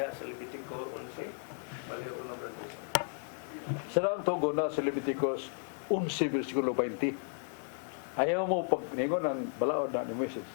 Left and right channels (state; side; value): silent; right; 55 dB below the other